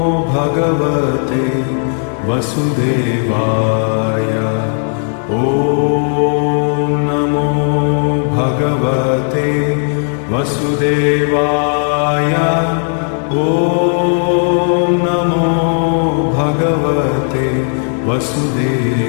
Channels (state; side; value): silent; right; 56 dB below the other